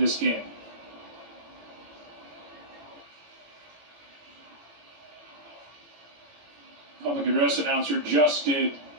game. Public address announcer just did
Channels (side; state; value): left; late; 18 ms